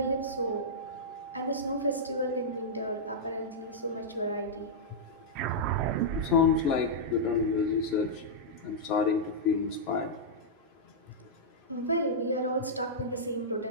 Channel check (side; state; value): both; normal; correlation -0.10